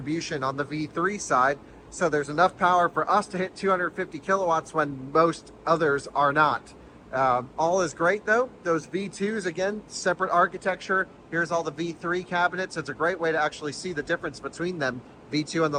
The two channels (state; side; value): identical; both; correlation 1.00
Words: on the V3 side. So there's enough power for us to hit 250 kilowatts when most others are not. All is great though. Those V2s, again, separate architecture. Here's all the V3 cabinets. It's a great way to actually see the difference between them. V2 on